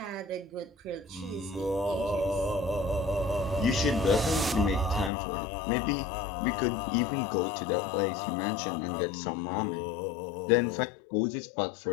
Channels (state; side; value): drops out; right; at 5.1 s